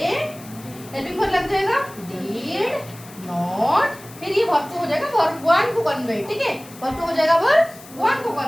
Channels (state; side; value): noise; left; hiss, 20 dB below the sound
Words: हेल्पिंग वर्ब लग जाएगा डिड नॉट, फिर ये वर्ब टू हो जाएगा वर्ब वन को कन्वर्ट। ठीक है, वर्ब टू हो जाएगा वर्ब वन को